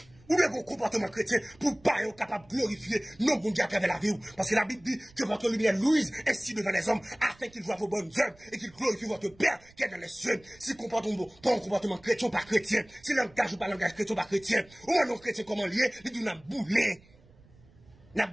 Ou bien vos comportements chrétiens pour pas être capable de glorifier non bon Dieu à travers la vie. Parce que la Bible dit que votre lumière luise ainsi devant les hommes afin qu'ils voient vos bonnes œuvres et qu'ils glorifient votre Père qui est dans les cieux. Si comportement pas un comportement chrétien ou pas chrétien, si langage ou pas langage chrétien ou pas chrétien, ou un non chrétien comment lié, il dit n'a boulé, n'a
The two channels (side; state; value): right; noise; rumble, 27 dB below the sound